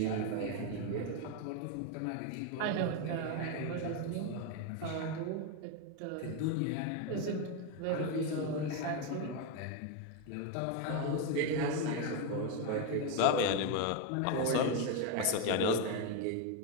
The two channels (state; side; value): different; both; correlation 0.02